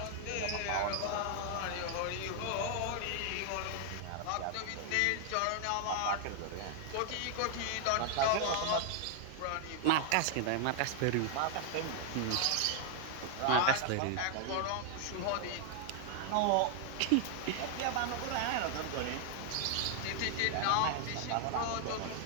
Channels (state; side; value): different; both; correlation 0.00